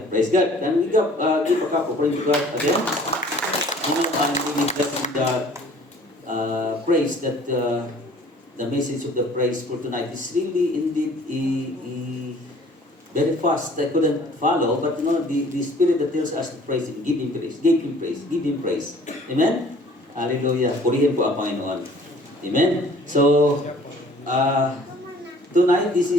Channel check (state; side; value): normal; both; correlation 0.53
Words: Praise God. Can we give a cup offering to God again? Amen. I'm really blessed with the praise that the message of the praise for tonight is really indeed very fast. I couldn't follow, but you know, the Spirit that tells us to praise Him, give Him praise, give Him praise, give Him praise. Amen? Hallelujah. Purihin po ang Panginoon. Amen? So, tonight, this